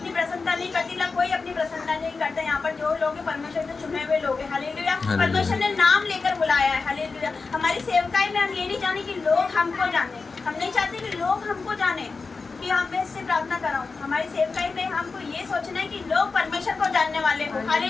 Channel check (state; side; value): quieter; right; 4.3 dB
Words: प्रसन्नता नहीं करती ना, कोई अपनी प्रसन्नता नहीं करता। यहाँ पर जो लोग परमेश्वर के चुने हुए लोग हैं। हालेलुया। परमेश्वर ने नाम लेकर बुलाया है। हालेलुया। हमारी सेवकाई में हम ये नहीं जाने कि लोग हमको जाने, हम नहीं चाहते कि लोग हमको जाने कि हम इससे प्रार्थना कराऊं। हमारी सेवकाई में हमको ये सोचना है कि लोग परमेश्वर को जानने वाले हो।